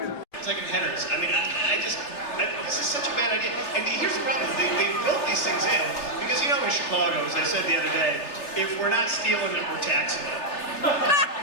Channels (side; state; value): right; late; 3.3 ms